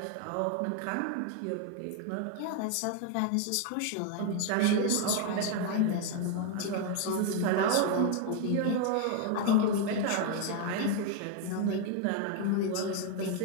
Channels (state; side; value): different; both; correlation 0.01